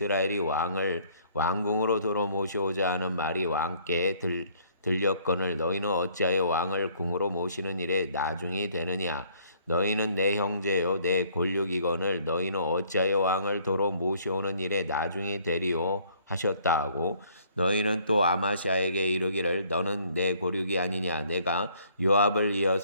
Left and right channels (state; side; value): inverted; both; correlation -0.62